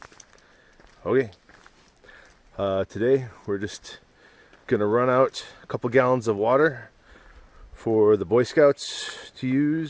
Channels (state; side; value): identical; both; correlation 1.00